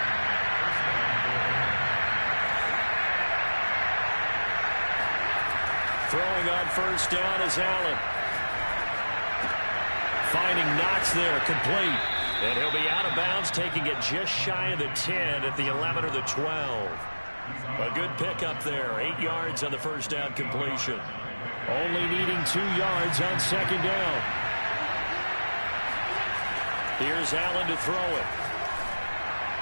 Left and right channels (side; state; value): both; inverted; correlation -1.00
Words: Throwing on first down is Allen. Finding Knox there, complete. And he'll be out of bounds, taking it just shy of the 10 at the 11 or the 12. A good pickup there, 8 yards on the first down completion. Only needing 2 yards on second down. Here's Allen to throw it.